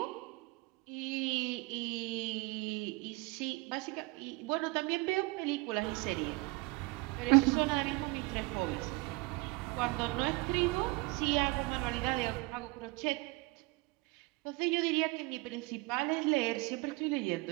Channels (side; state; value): left; quieter; 24.6 dB